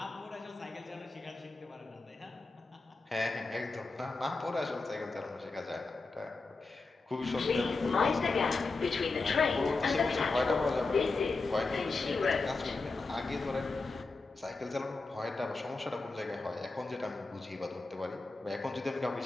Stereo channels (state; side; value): quieter; right; 3.7 dB